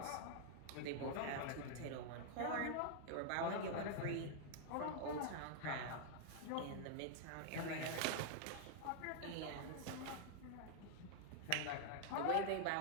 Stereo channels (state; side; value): different; both; correlation -0.01